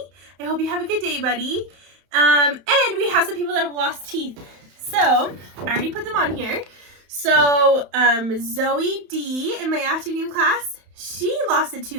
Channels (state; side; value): late; left; 31 ms